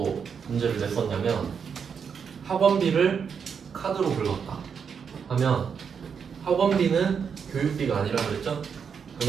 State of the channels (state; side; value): quieter; left; 6.7 dB